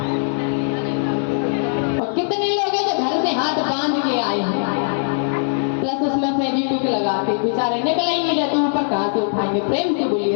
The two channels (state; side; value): silent; right; 66 dB below the other